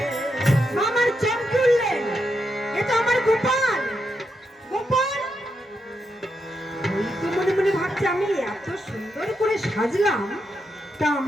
মামার চোখ খুললেন, এ তো আমার গোপাল, গোপাল। ওই তো মনে মনে ভাবছে আমি এত সুন্দর করে সাজলাম, তা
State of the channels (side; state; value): both; normal; correlation 0.83